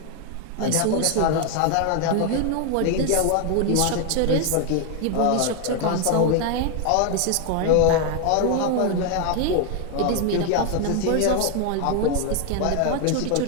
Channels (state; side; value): different; both; correlation 0.00